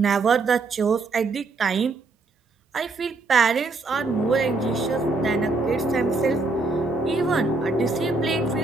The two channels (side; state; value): left; quieter; 3.6 dB